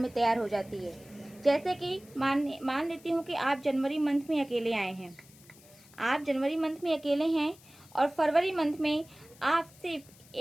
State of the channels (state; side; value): noise; left; hiss, 24 dB below the sound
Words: तैयार हो जाती है। जैसे कि मान लेती हूँ कि आप जनवरी मंथ में अकेले आए हैं, और फरवरी मंथ में आप सिर्फ